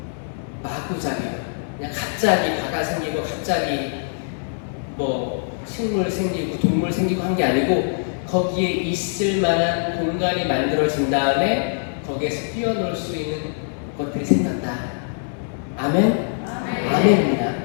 마구잡이. 그냥 갑자기 바다 생기고 갑자기 뭐 식물 생기고 동물 생기고 한 게 아니고 거기에 있을 만한 공간이 만들어진 다음에 거기에서 뛰어놀 수 있는 것들이 생겼다. 아멘? 아멘입니다.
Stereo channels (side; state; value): right; silent; 61 dB below the other